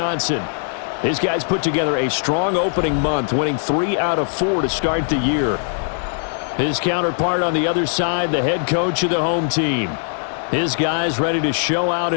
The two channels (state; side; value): silent; right; digital silence